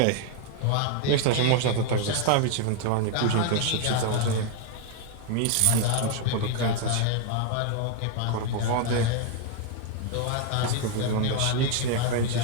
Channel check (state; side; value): different; both; correlation 0.00